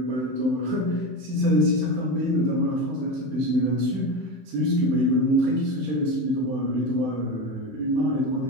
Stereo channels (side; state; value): left; late; 16 ms